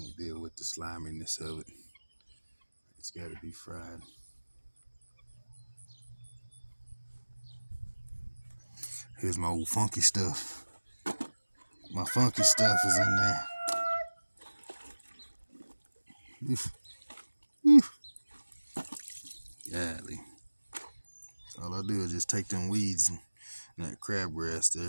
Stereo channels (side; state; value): both; inverted; correlation -1.00